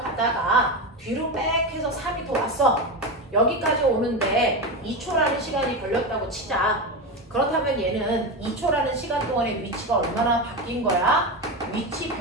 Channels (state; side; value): normal; both; correlation 0.17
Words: 뒤로 빽 해서 4m 왔어. 여기까지 오는데 2초라는 시간이 걸렸다고 치자. 그렇다면 얘는 2초라는 시간 동안의 위치가 얼마나 바뀐 거야? 위치